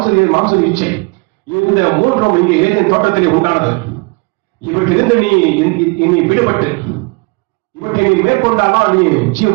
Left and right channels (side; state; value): left; quieter; 28.9 dB